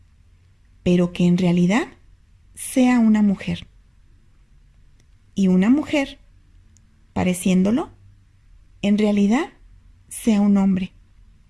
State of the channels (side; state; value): both; identical; correlation 1.00